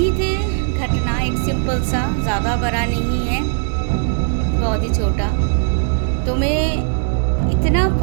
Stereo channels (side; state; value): left; silent; 61 dB below the other